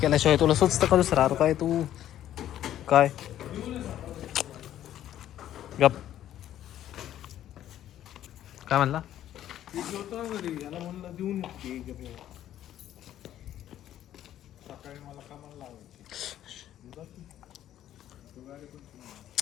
तुला सुचतं करूच राहतो काय तू काय गप काय म्हणला.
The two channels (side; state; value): right; quieter; 11.9 dB